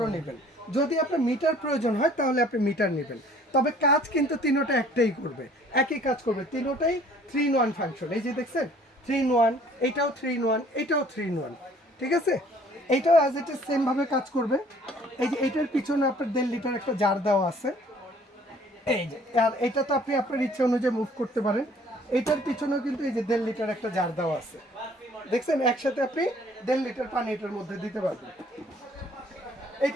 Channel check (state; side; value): normal; both; correlation 0.56